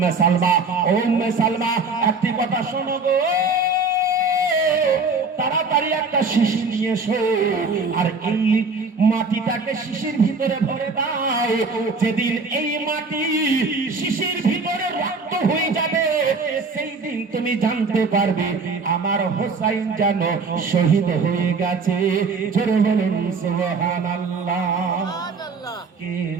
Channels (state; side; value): quieter; left; 3.9 dB